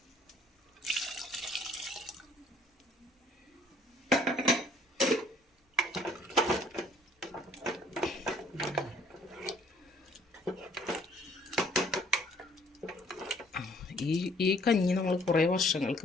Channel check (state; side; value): normal; both; correlation 0.60